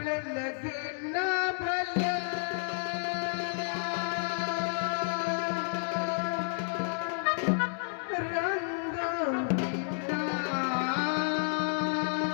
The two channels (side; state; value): right; silent; digital silence